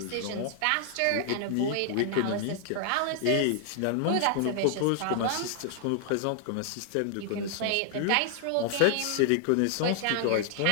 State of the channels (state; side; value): different; both; correlation 0.00